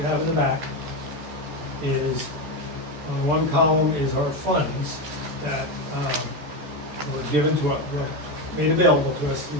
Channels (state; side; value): late; left; 14 ms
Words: have in the back is, on the one column is our funds that, were given to us, were made available to us through